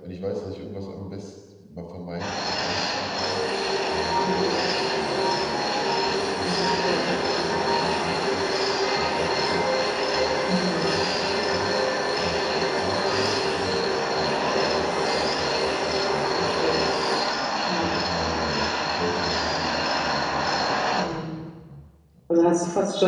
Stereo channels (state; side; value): identical; both; correlation 1.00